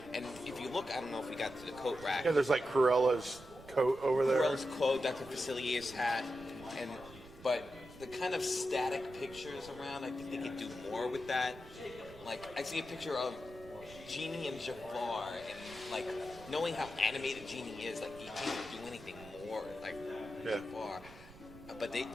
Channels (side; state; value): right; noise; rumble, 19 dB below the sound